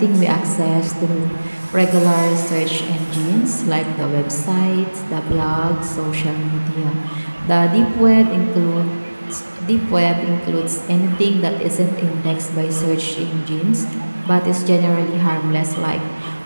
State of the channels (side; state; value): both; inverted; correlation -1.00